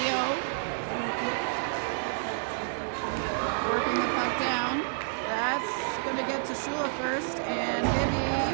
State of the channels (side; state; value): left; silent; 58 dB below the other